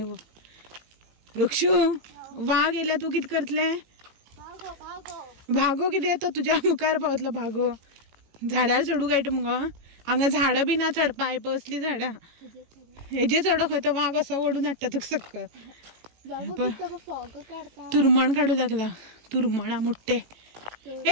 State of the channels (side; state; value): left; late; 18 ms